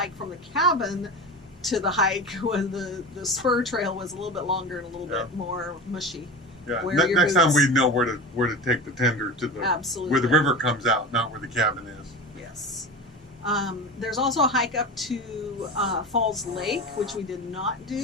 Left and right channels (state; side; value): normal; both; correlation 0.28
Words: from the cabin to the hike when the spur trail was a little bit longer and a little bit more mushy. Yeah. Wear your Next time boots. we know where to take the tender to the Absolutely. where the river comes out, not where the cabin is. Yes. There's also a hike up to Falls Lake, which we did not